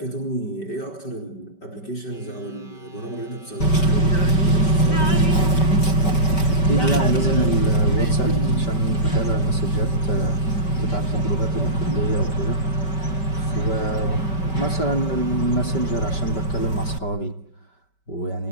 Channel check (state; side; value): late; right; 5.2 ms